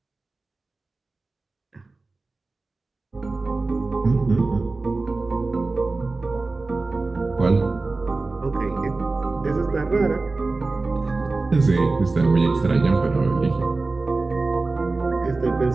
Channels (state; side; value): quieter; left; 3.5 dB